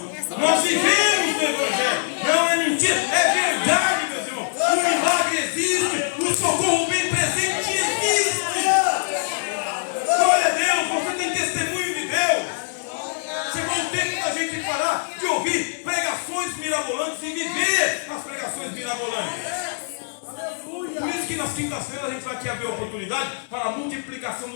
Nós vivemos no Evangelho, não é mentira, é verdade, meus irmãos. O milagre existe, o socorro bem presente existe. Glória a Deus, você tem testemunho de Deus. Chegou o tempo da gente parar de ouvir pregações mirabolantes e viver as pregações mirabolantes. Por isso que nas quintas-feiras a gente vai aqui abrir a oportunidade para a multiplicação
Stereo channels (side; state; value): right; silent; 60 dB below the other